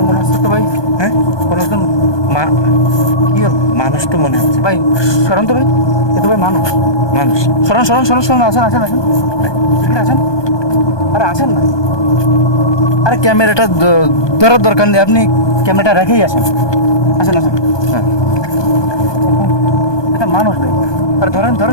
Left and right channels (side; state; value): right; late; 1.2 ms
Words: মনে হচ্ছে তো ভাই। হ্যাঁ, কোনো একজন কি হল? মানুষ তো মনে হচ্ছে। ভাই সরণ তো ভাই, এ তো ভাই মানুষ। মানুষ। সরণ সরণ সরণ সরণ, আসেন আসেন আসেন এখানে আসেন। আরে আসেন না, আরে ক্যামেরাটা ধরার দরকার নেই, আপনি ক্যামেরাটা রেখেই আসেন। আসেন আসেন। হ্যাঁ এটা মানুষ ভাই। আরে ধরেন